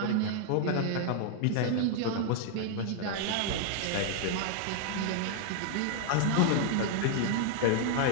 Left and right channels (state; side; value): different; both; correlation 0.00